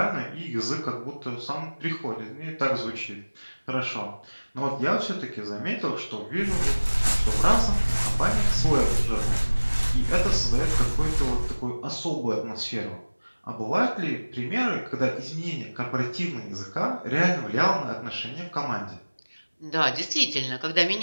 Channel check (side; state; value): both; inverted; correlation -1.00